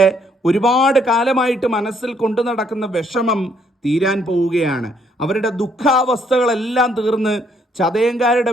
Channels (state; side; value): normal; both; correlation 0.69